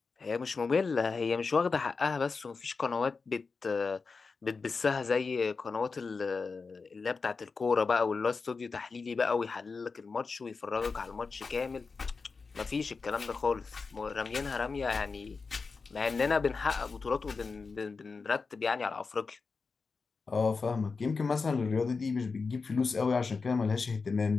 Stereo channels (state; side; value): quieter; right; 4.6 dB